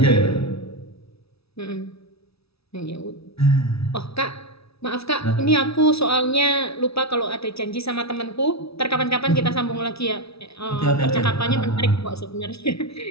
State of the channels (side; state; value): right; late; 0.77 ms